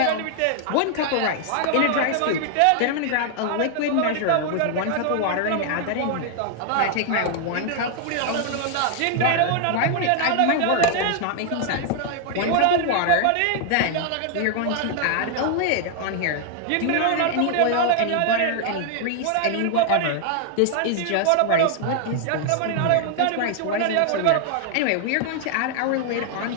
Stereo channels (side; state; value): both; different; correlation 0.00